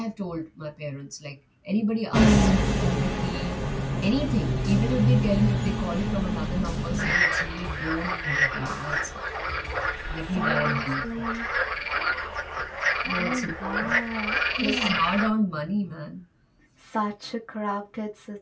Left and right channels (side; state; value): both; identical; correlation 1.00